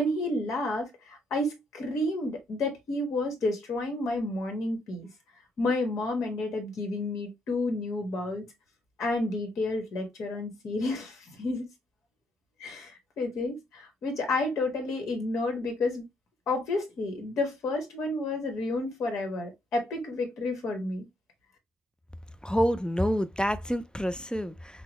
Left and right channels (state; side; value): normal; both; correlation 0.74